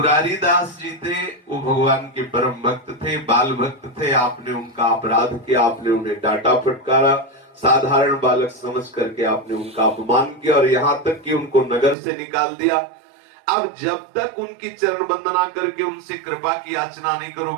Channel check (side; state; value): left; drops out; at 12.0 s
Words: दास जी थे वो भगवान के परम भक्त थे, बाल भक्त थे। आपने उनका अपराध किया, आपने उन्हें डांटा फटकारा, साधारण बालक समझ करके आपने उनका अपमान किया और यहाँ तक कि उनको नगर से निकाल दिया। अब जब तक उनकी चरण वंदना करके उनसे कृपा की याचना नहीं